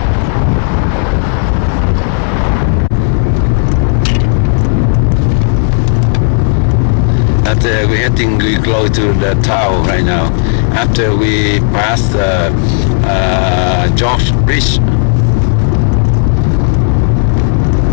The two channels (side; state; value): right; silent; 60 dB below the other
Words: We're heading close to the town right now. After we pass the George Bridge.